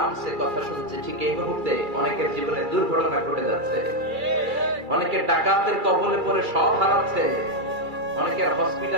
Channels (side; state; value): left; late; 2.3 ms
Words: কথা শুনছি, ঠিক এই মুহূর্তে অনেকের জীবনে দুর্ঘটনা ঘটে যাচ্ছে, অনেকের ডাকাতের কবলে পড়ে সব হারাচ্ছে, অনেকের